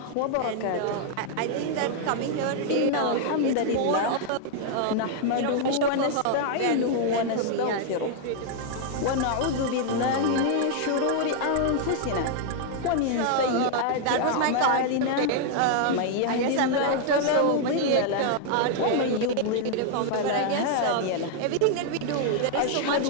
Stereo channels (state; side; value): different; both; correlation 0.00